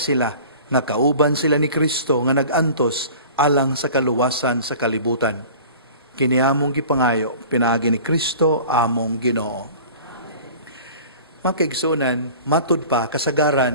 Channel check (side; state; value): both; inverted; correlation -0.42